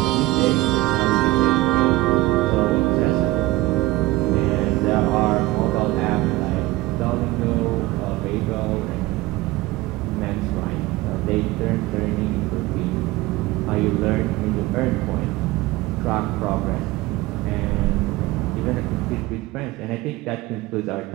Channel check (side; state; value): left; quieter; 18.7 dB